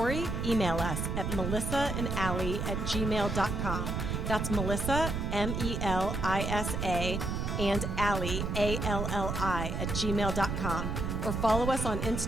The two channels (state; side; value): noise; right; rumble, 2 dB below the sound